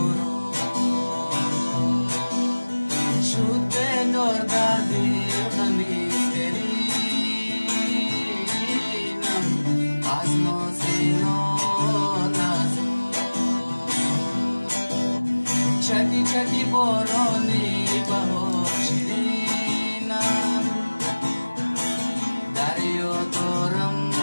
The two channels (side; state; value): both; inverted; correlation -1.00